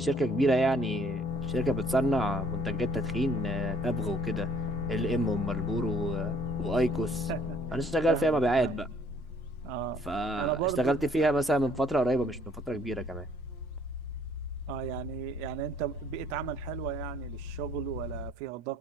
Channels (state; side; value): normal; both; correlation 0.60